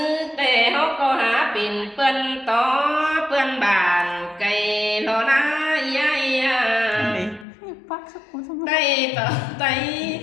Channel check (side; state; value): right; drops out; at 7.5 s